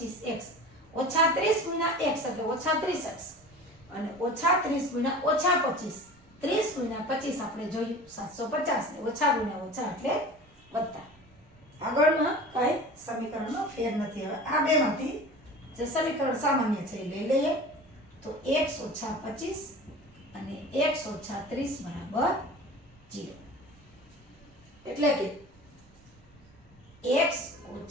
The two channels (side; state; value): both; normal; correlation 0.38